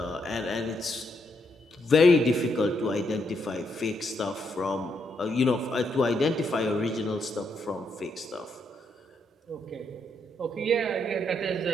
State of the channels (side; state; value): both; normal; correlation 0.77